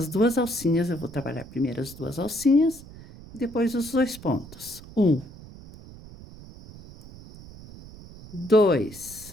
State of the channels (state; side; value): noise; right; rumble, 18 dB below the sound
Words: 2 alcinhas, eu vou trabalhar primeiro as 2 alcinhas e depois os 2 pontos. 1,